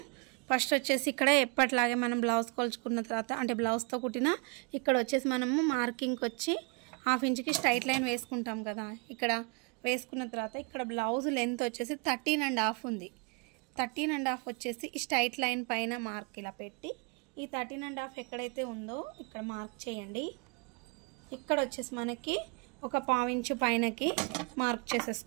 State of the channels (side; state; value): left; quieter; 31.9 dB